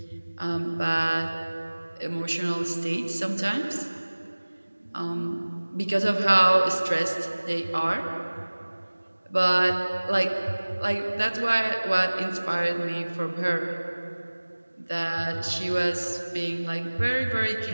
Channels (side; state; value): both; inverted; correlation -1.00